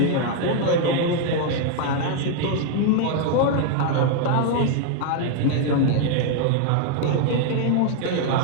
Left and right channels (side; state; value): both; different; correlation 0.00